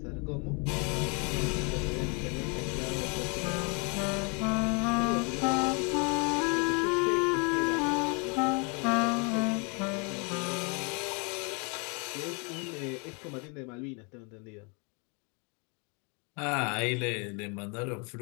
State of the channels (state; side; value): quieter; right; 33.5 dB